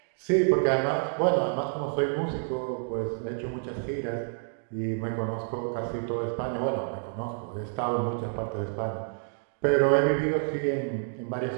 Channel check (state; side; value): silent; left; digital silence